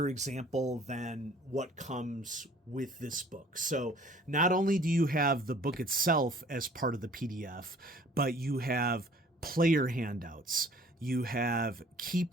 example than what comes with this book. So not only do you have the book itself as part of the PDF, but you have player handouts, you have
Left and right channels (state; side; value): normal; both; correlation 0.53